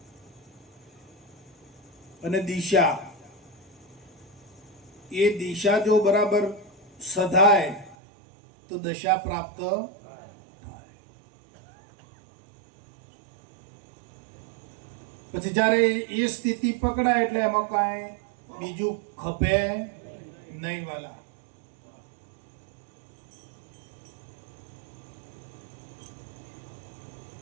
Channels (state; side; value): drops out; left; at 8.0 s